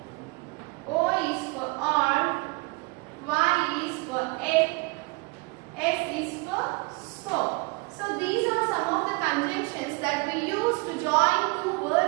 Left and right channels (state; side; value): quieter; left; 27.0 dB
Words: O is for or, Y is for it, S is for so. So these are some of the conjunctions that we use to join two